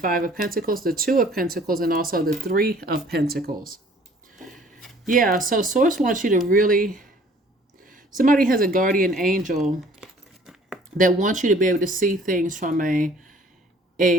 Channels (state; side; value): normal; both; correlation 0.55